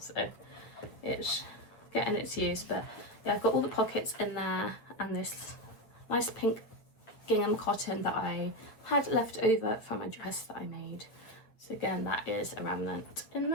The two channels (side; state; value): right; late; 8.8 ms